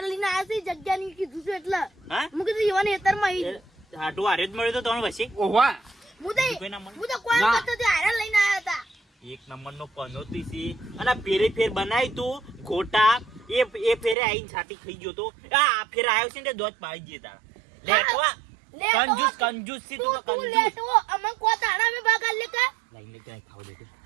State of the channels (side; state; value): left; drops out; at 14.2 s